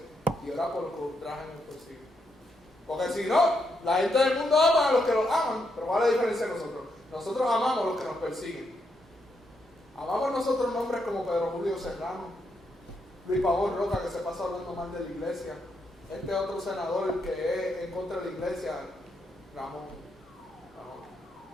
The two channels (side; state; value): both; normal; correlation 0.80